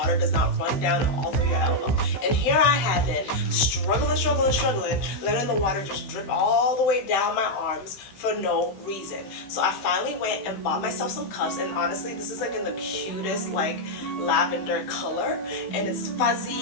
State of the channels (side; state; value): right; late; 15 ms